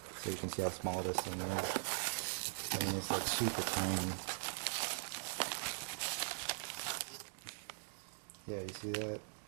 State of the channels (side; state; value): left; silent; digital silence